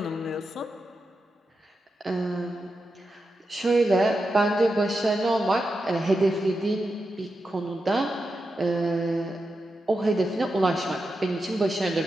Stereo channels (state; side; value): normal; both; correlation 0.88